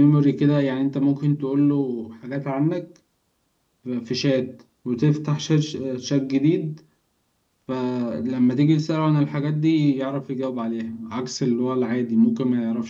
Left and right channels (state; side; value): identical; both; correlation 1.00